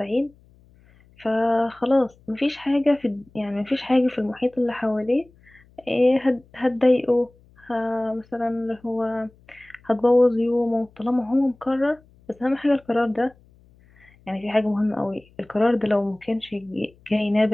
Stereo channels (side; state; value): left; noise; hum, 29 dB below the sound